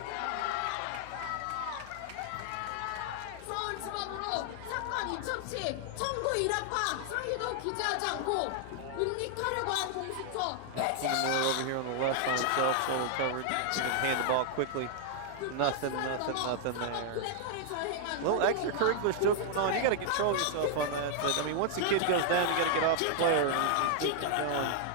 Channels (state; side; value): different; both; correlation 0.00